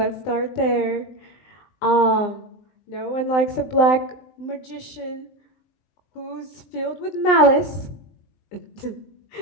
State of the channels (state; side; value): late; right; 19 ms